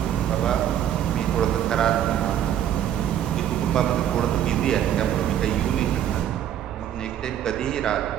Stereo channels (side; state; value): left; quieter; 10.6 dB